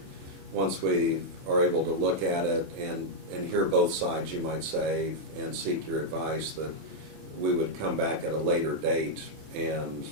once we are able to look at it and hear both sides, you might say, and seek your advice, that we would come back at a later date and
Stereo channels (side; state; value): left; late; 25 ms